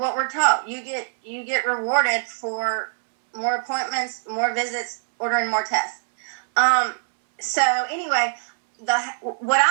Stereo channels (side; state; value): left; silent; 63 dB below the other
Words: we're taught. You get rewarded for more appointments, more visits, ordering more tests. So anyway, what